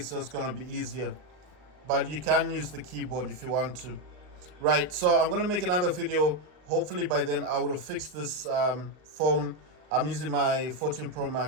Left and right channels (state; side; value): late; left; 39 ms